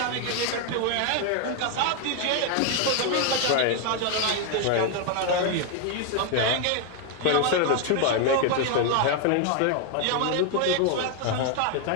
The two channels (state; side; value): different; both; correlation 0.01